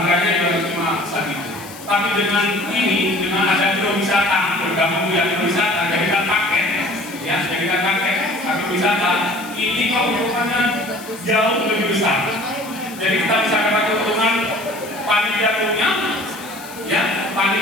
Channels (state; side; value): noise; left; hiss, 17 dB below the sound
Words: juga cuma segitu. Tapi dengan ini, dengan ada agrowisata, bergabung dengan agrowisata, jadikan paket, ya jadikan paket agrowisata, ini keuntungannya jauh lebih besar. Jadi kita bisa dapat keuntungan panen jagungnya, ya